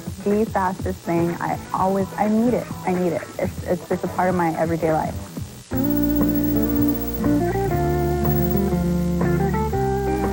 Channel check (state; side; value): identical; both; correlation 1.00